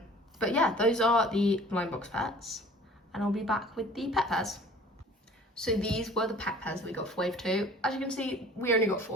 But yeah, those are the blind box pets, and I'll be back with the pet pairs. So these were the pet pairs that we got for wave 2. As you can see, we only got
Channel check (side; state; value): both; normal; correlation 0.48